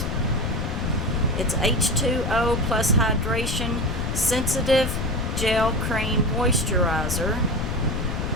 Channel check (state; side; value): noise; left; rumble, 1 dB below the sound